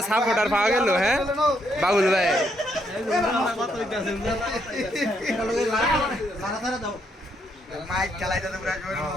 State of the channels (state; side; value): normal; both; correlation 0.75